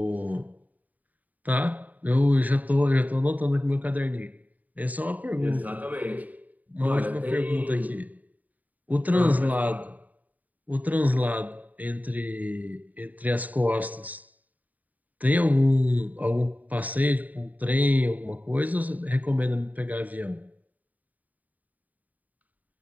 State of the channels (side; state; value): left; late; 0.076 ms